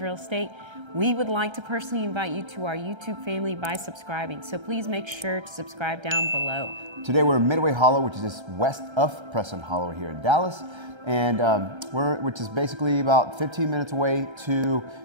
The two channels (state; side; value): late; left; 1.3 ms